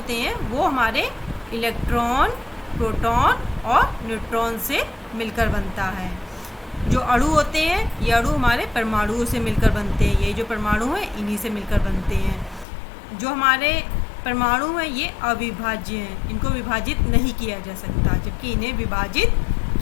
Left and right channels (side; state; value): right; drops out; at 12.7 s